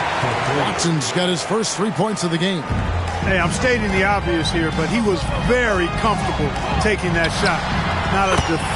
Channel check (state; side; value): identical; both; correlation 1.00